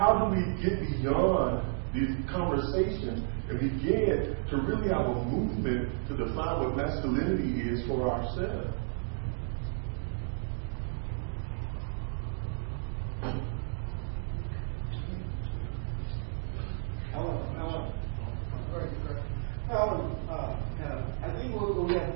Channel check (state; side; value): silent; left; digital silence